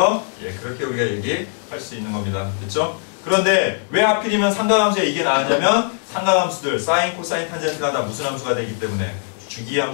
예, 그렇게 우리가 얘기할 수 있는 겁니다. 됐죠? 그런데 왜 하필이면 삼각함수에 이게 나왔냐면, 삼각함수들 사인, 코사인, 탄젠트가 다 무슨 함수가 되기 때문에,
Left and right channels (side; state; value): right; silent; 58 dB below the other